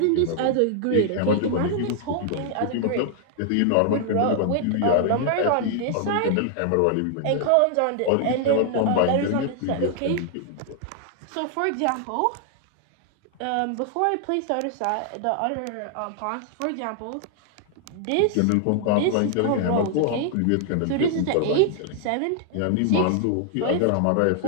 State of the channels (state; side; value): different; both; correlation 0.00